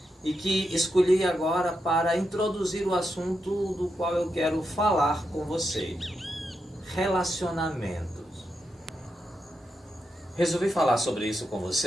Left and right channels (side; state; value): both; normal; correlation 0.85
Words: e que escolhi agora para introduzir o assunto do qual eu quero falar com você: relacionamentos. Resolvi falar sobre isso com